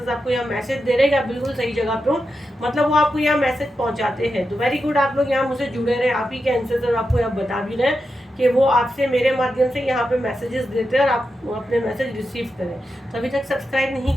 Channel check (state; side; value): normal; both; correlation 0.88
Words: आपको यहाँ मैसेज दे रहे हैं कि आप बिल्कुल सही जगह पे हो, मतलब वो आपको यहाँ मैसेज पहुँचाते हैं। तो वेरी गुड, आप लोग यहाँ मुझसे जुड़े रहे, आप ही के एंसेस्टर आपको यहाँ बता भी रहे हैं कि वो आपसे मेरे माध्यम से यहाँ पे मैसेजेस देते हैं और आप अपने मैसेज रिसीव करें। तो अभी तक सब्सक्राइब नहीं